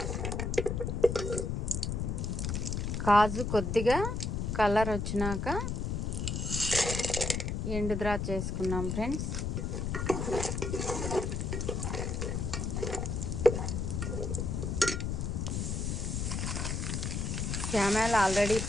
కాజు కొద్దిగా కలర్ వచ్చినాక ఎండు ద్రాక్ష వేసుకున్నాం ఫ్రెండ్స్. క్యామెల్ ఆల్రెడీ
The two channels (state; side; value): noise; left; rumble, 1 dB below the sound